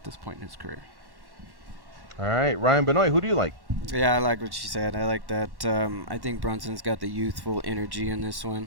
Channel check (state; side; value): late; left; 1.1 ms